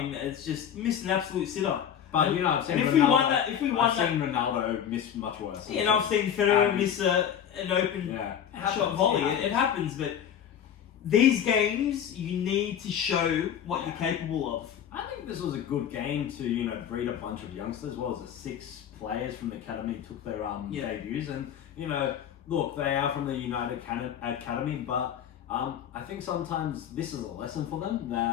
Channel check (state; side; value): quieter; right; 9.1 dB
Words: It's just missed an absolute sitter. But I've seen I've seen Ronaldo miss much worse. Yeah, and I've seen Federer miss an open shot volley. It happens, but these games, you need to show what you're capable of. I think this was a good game to, breed a bunch of youngsters. What was it, 6 players from the academy took their debuts, and look, they are from the United Academy, but I think sometimes this is a lesson for them